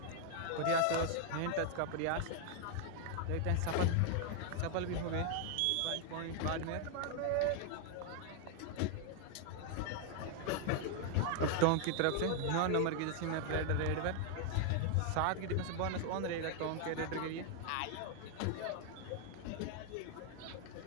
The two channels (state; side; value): different; both; correlation 0.00